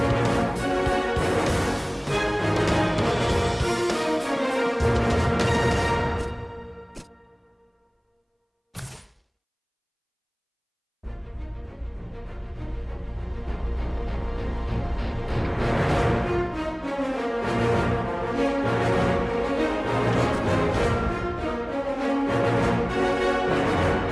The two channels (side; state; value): both; identical; correlation 1.00